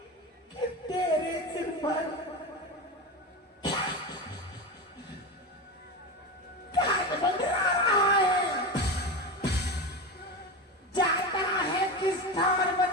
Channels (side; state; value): both; normal; correlation 0.21